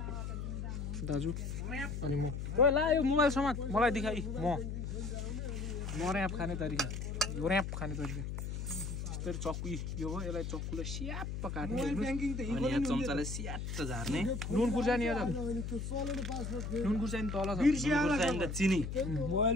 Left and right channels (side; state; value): left; noise; hum, 4 dB below the sound